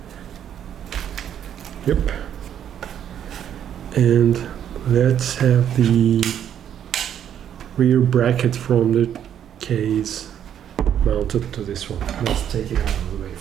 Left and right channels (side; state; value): left; quieter; 9.6 dB